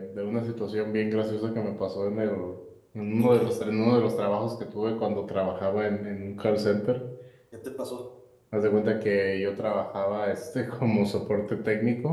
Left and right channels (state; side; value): identical; both; correlation 1.00